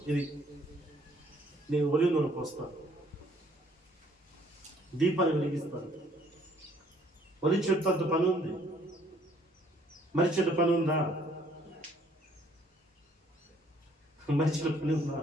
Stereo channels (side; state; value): both; normal; correlation 0.62